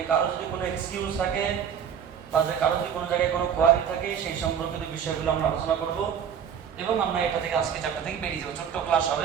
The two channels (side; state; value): left; quieter; 8.1 dB